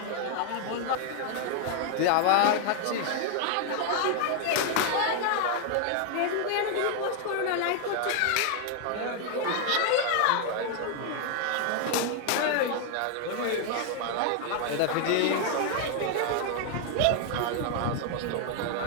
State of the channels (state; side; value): different; both; correlation 0.00